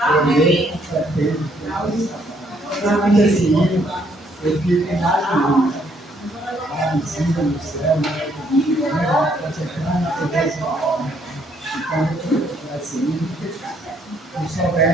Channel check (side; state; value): both; normal; correlation 0.69